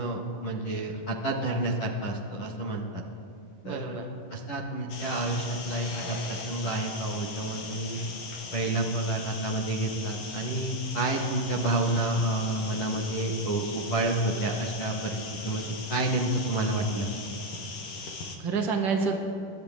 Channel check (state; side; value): late; right; 11 ms